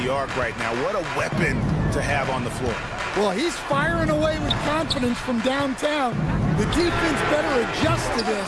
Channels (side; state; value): both; identical; correlation 1.00